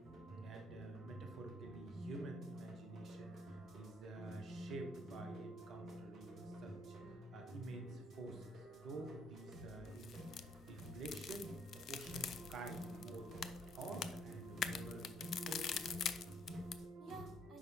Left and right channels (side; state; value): both; normal; correlation 0.67